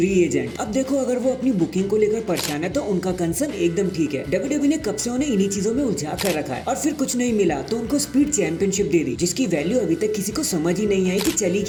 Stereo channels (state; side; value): identical; both; correlation 1.00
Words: एजेंट। अब देखो, अगर वो अपनी बुकिंग को लेकर परेशान है तो उनका कंसर्न एकदम ठीक है। डब्ल्यूडब्ल्यूई ने कब से उन्हें इन्हीं चीजों में उलझा कर रखा है और फिर कुछ नहीं मिला तो उनको स्पीड चैंपियनशिप दे दी, जिसकी वैल्यू अभी तक किसी को समझ ही नहीं आई कि चली